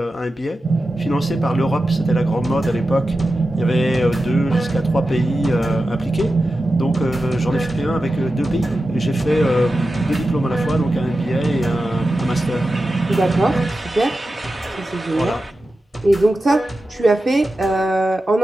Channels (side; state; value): both; normal; correlation 0.92